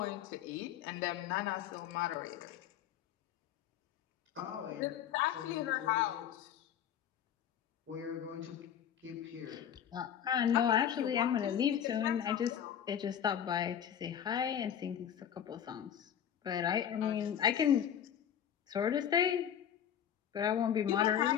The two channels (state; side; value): quieter; right; 9.4 dB